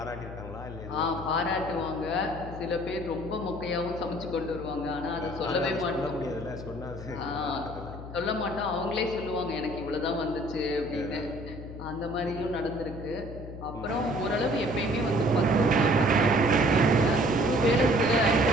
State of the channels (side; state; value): left; noise; hum, 11 dB below the sound